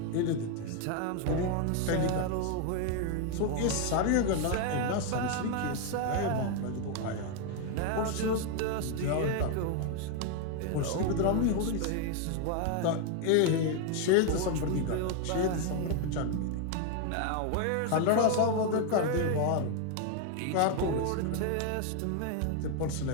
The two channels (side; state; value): both; different; correlation 0.01